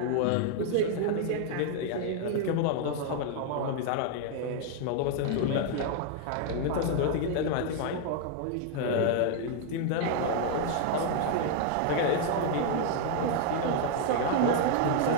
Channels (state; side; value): different; both; correlation 0.00